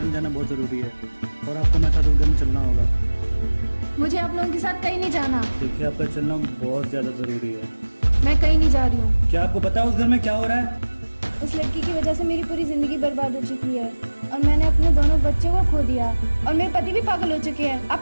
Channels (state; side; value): inverted; both; correlation -1.00